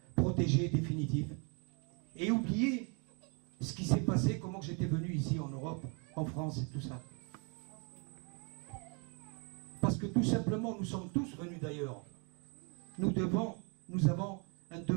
protégée définitive. Et oublier ce qui s'est passé, comment j'étais venu ici en Europe, en France et tout ça. Parce que tout simplement, nous sommes tous venus d'ailleurs. Nous avons un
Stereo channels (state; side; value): quieter; left; 35.2 dB